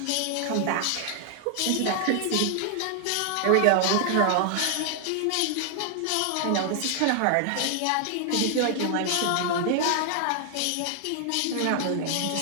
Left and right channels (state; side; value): different; both; correlation 0.00